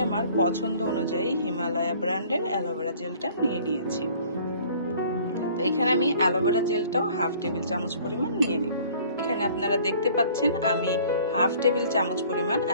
আমার পছন্দ অনুযায়ী হিমালয়া ব্র্যান্ডের অ্যালোভেরা জেলটা নিয়ে নিয়েছি। তো এখানে আমি অ্যালোভেরা জেলটাও 1/2 টেবিল চামচ পরিমাণ নিয়ে নিব। এখানে আপনারা দেখতে পাচ্ছেন আমি 1/2 টেবিল চামচ পরিমাণ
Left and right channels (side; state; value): both; inverted; correlation -0.53